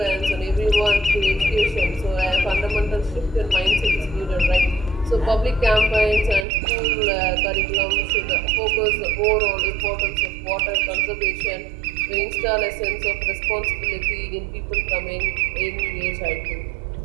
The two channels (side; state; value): left; drops out; at 6.5 s